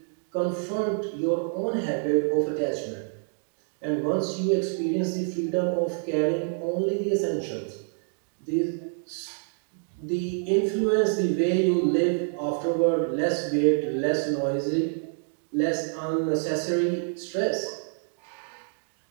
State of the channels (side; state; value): left; silent; 60 dB below the other